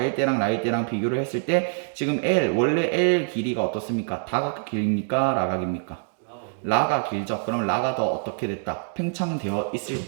때랑 라일 때랑 비교를 했을 때 지금 원래 L 길이가 어떻습니까? 다가 길입니까? 라가 깁니까? 라가 길죠. 그럼 라가 더 어떻게 됐다? 팽창되어 있을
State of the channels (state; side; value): silent; left; digital silence